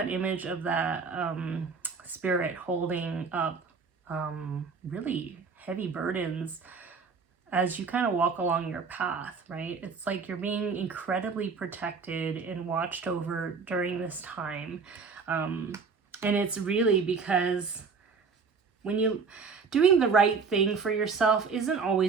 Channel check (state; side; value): quieter; left; 5.1 dB